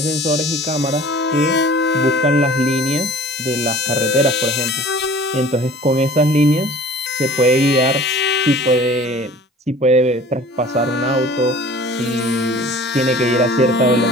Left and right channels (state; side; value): normal; both; correlation 0.46